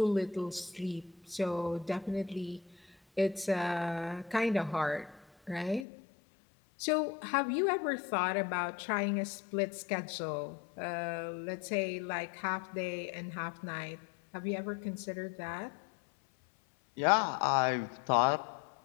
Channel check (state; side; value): drops out; right; at 5.9 s